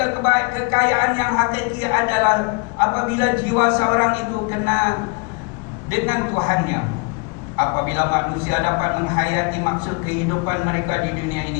kekayaan yang hakiki adalah apabila jiwa seorang itu kena dengan Tuhannya. Apabila manusia dapat menghayati maksud kehidupan mereka di dunia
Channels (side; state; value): right; quieter; 31.7 dB